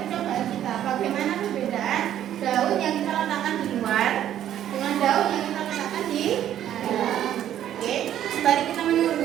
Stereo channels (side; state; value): left; quieter; 11.2 dB